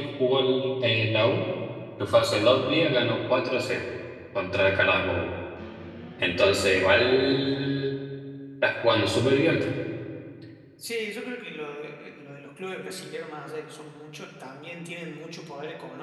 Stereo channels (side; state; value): both; identical; correlation 1.00